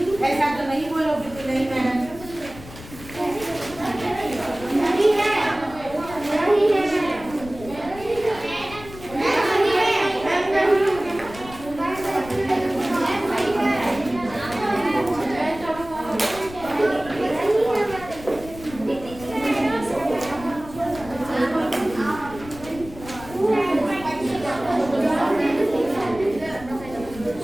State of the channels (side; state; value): left; noise; rumble, 16 dB below the sound